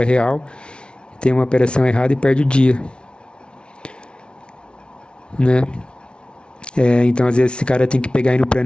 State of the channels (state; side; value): late; right; 0.057 ms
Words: real, tem uma operação errada e perde o dia. Né? Então às vezes esse cara tem que pegar aí no